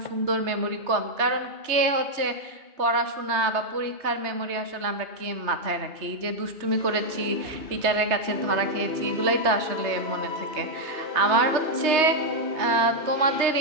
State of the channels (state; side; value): late; left; 3.2 ms